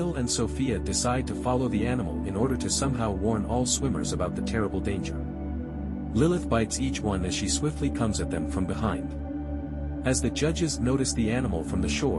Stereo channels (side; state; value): both; identical; correlation 1.00